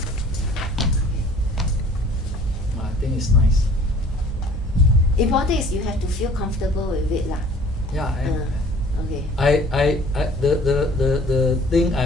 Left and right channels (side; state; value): both; normal; correlation 0.51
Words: I think it's nice. Important is you have to feel comfortable with it lah. Yeah, I am. Okay. The thing